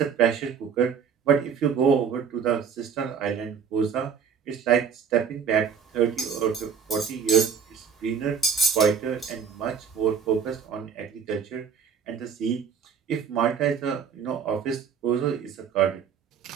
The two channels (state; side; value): quieter; left; 6.9 dB